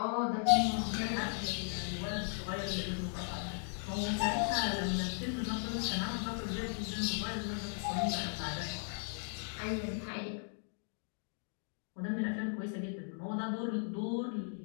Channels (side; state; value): right; silent; 53 dB below the other